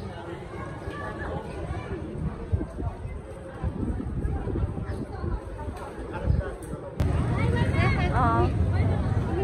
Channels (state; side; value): identical; both; correlation 1.00